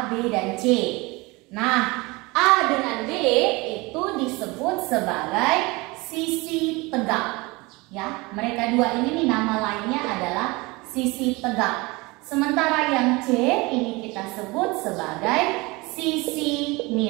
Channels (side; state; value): left; quieter; 24.2 dB